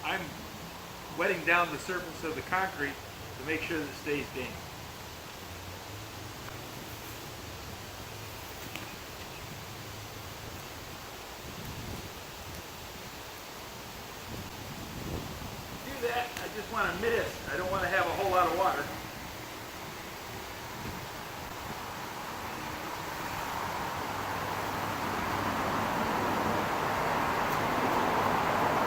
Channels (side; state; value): both; identical; correlation 1.00